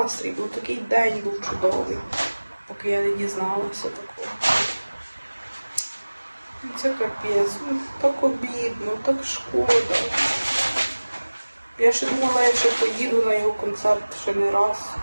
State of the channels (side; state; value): both; inverted; correlation -1.00